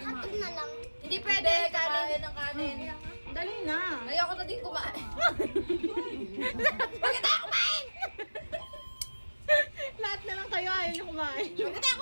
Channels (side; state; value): both; inverted; correlation -1.00